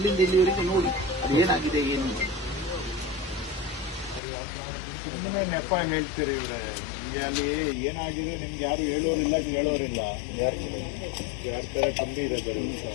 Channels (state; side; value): drops out; right; at 4.2 s